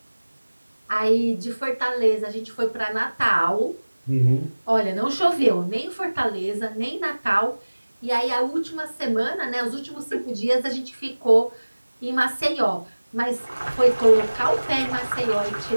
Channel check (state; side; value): inverted; both; correlation -1.00